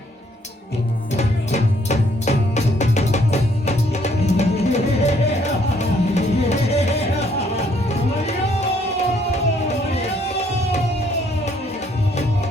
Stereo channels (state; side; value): normal; both; correlation 0.66